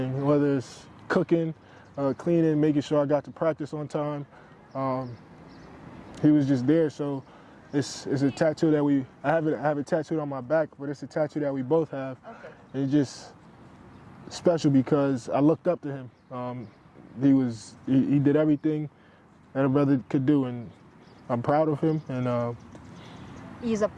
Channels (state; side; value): identical; both; correlation 1.00